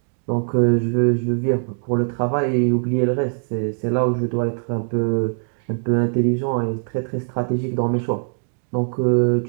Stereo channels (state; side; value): silent; left; digital silence